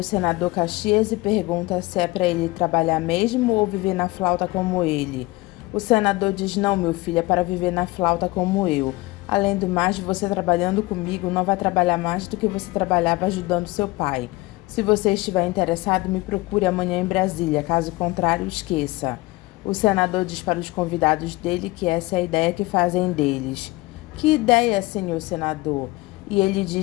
senador Caxias e pergunta se é para ele trabalhar mesmo ou viver na flauta como ele. O senador diz: não, meu filho, é para viver na flauta como eu. Além do mais, você trabalhando comigo não vai trabalhar mais do que você trabalhava ajudando seu pai. Se você estiver interessado, me procure amanhã em Brasília, caso contrário, esqueça. O senador diz para os convidados dele que essa é a ideia que fazem deles. Que ideia, senhor senador? E ele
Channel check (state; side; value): quieter; right; 21.4 dB